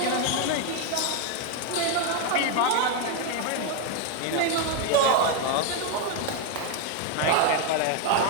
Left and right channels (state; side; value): different; both; correlation 0.01